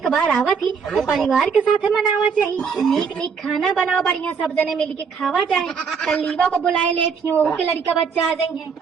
बार आवा थी तो परिवार के साथ मनावा चाहिए। नीक नीक खाना बनाओ, बढ़िया सब जने मिल के खावा जाए। कल लीवा को बुलाए ले थी, वो के लड़का बच्चा आ जाएंगे,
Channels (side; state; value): left; quieter; 6.0 dB